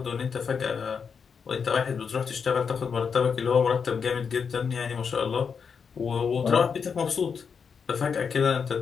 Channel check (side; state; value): right; quieter; 6.2 dB